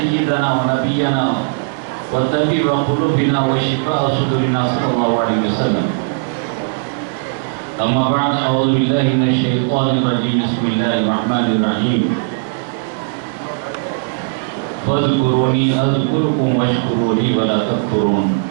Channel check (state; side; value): silent; left; digital silence